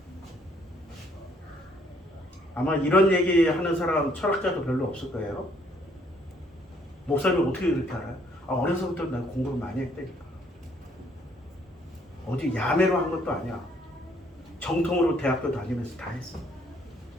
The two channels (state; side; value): normal; both; correlation 0.65